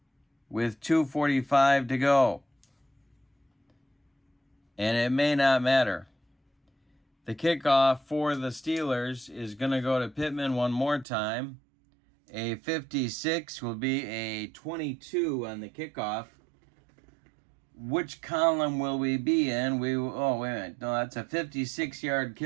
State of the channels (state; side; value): drops out; left; at 11.1 s